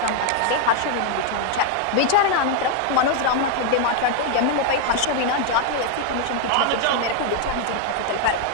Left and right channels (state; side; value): different; both; correlation 0.00